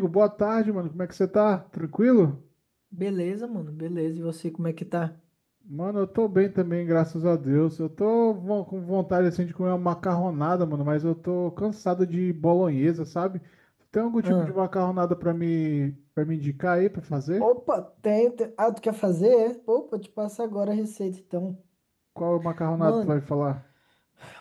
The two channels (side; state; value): both; identical; correlation 1.00